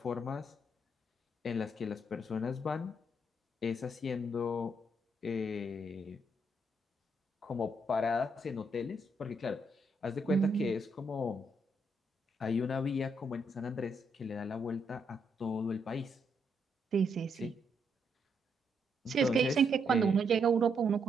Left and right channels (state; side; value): normal; both; correlation 0.76